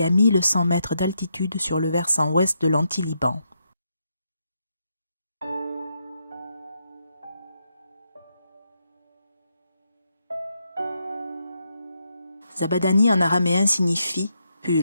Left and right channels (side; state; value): both; inverted; correlation -0.81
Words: à 1100 mètres d'altitude sur le versant ouest de l'anti-Liban. Zabadani en araméen signifie «